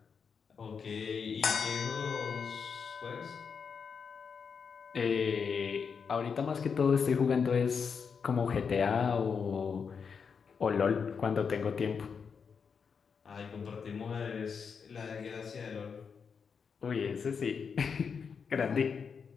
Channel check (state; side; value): quieter; right; 6.1 dB